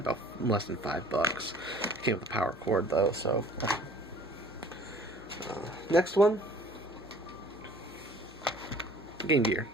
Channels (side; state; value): both; normal; correlation 0.51